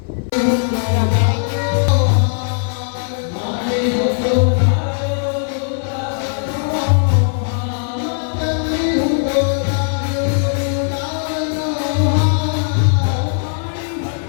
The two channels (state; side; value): silent; right; 59 dB below the other